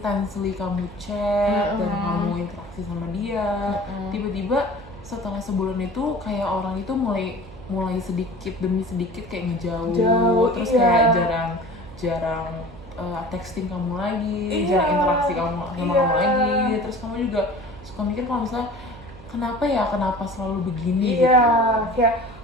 kamu chat dan kamu interaksi sama dia. Tiba-tiba setelah sebulan itu kayak orang itu mulai sedikit demi sedikit kayak ngejauh, terus kayak jarang texting kamu lagi, jarang interaksi kamu sama kamu lagi. Terus kamu juga suka mikir kalau misalnya kenapa selalu begini Iya, gitu. kayak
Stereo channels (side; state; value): right; noise; hum, 19 dB below the sound